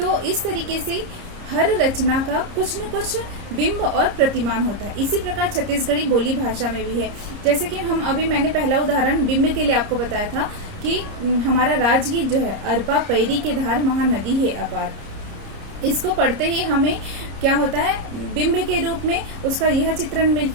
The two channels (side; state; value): left; late; 30 ms